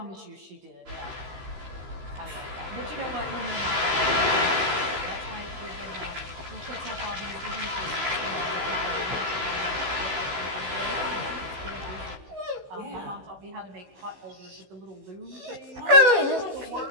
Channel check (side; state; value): left; late; 15 ms